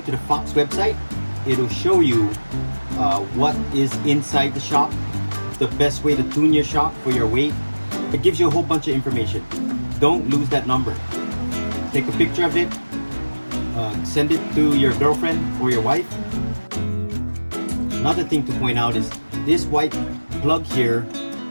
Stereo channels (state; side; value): inverted; both; correlation -1.00